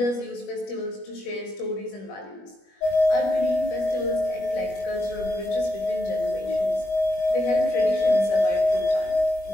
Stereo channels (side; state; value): right; late; 21 ms